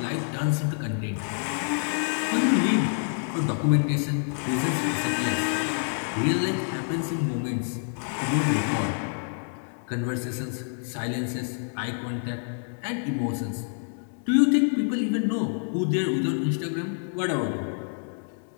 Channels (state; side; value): silent; right; 60 dB below the other